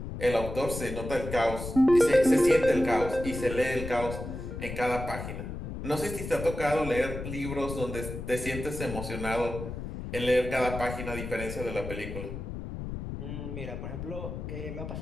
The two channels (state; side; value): noise; left; rumble, 7 dB below the sound